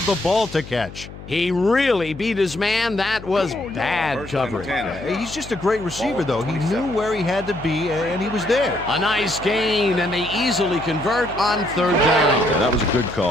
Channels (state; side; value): noise; left; hum, 15 dB below the sound